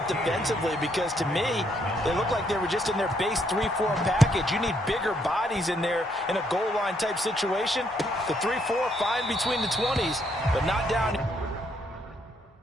defensively because to me, they look like they were just in their base 3-4 package. You need bigger bodies in there in a goal line type situation. The 3-4, fine between the 20s, but not down here.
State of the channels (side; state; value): both; normal; correlation 0.72